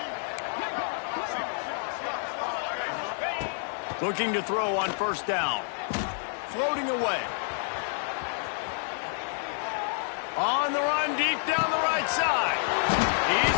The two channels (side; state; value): right; silent; 59 dB below the other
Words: Looking to throw on first down. Floating away. On the run, deep down the right side.